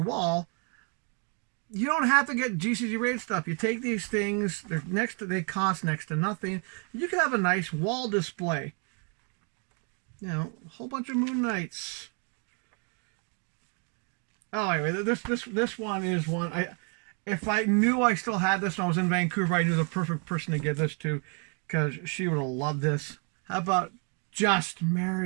wall, you don't have to get GCG rated stuff. You take these things, they cost next to nothing. You can have a nice wall display. You know, a whole bunch of Moon Knights. Oh, anyway, this one is one. If I knew I still had this when I was in Vancouver, I knew the perfect person to give this to, because she would have loved this. How about Just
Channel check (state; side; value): quieter; left; 38.6 dB